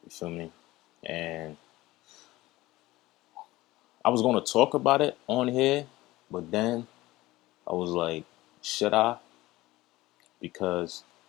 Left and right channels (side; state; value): right; quieter; 18.3 dB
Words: You feel me? And I was gonna talk about it on here, but then I was like, should I? Because